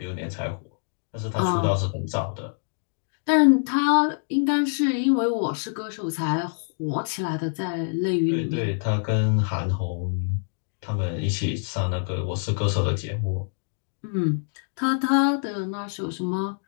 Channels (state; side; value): silent; right; digital silence